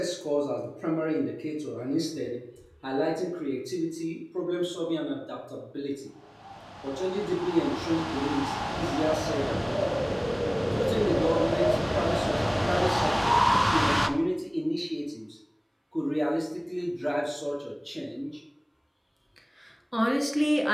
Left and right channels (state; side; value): identical; both; correlation 1.00